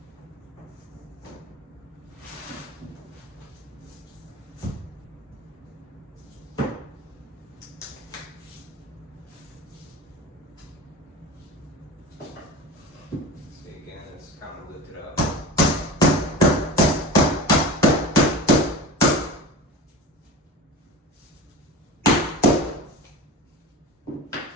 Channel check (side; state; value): both; normal; correlation 0.31